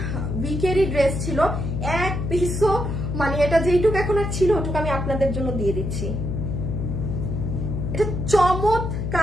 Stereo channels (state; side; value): noise; left; hum, 3 dB below the sound